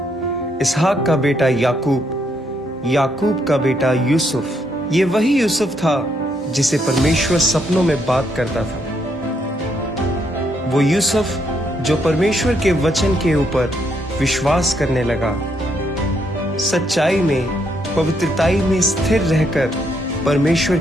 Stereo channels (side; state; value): both; normal; correlation 0.75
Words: इसहाक का बेटा याकूब, याकूब का बेटा यूसुफ। ये वही यूसुफ था जिसे परमेश्वर सपनों में बात करता था। वो यूसुफ जो परमेश्वर के वचन के ऊपर विश्वास करने लगा, सच्चाई में, पवित्रताई में स्थिर रहकर परमेश्वर